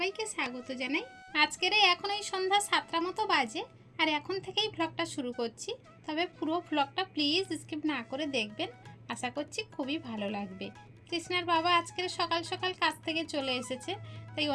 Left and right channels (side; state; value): both; identical; correlation 1.00